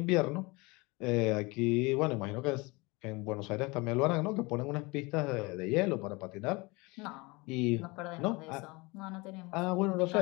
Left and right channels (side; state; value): right; quieter; 25.2 dB